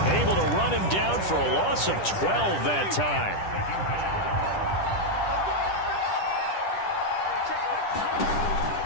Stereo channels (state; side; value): late; right; 10 ms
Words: able to run him down for a loss of 12 that time.